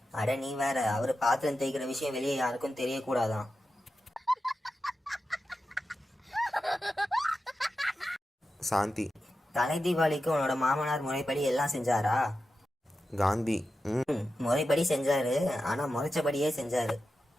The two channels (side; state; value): both; normal; correlation 0.91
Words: அட நீ வேற, அவரு பாத்திரம் தேய்க்கிற விஷயம் வெளியே யாருக்கும் தெரியக்கூடாதான். சாந்தி. தலை தீபாவளிக்கு உன்னோட மாமனார் முறைப்படி எல்லாம் செஞ்சாரா? காந்தி. முறைப்படி செஞ்சாரு, ஆனா முறைச்சபடியே செஞ்சாரு.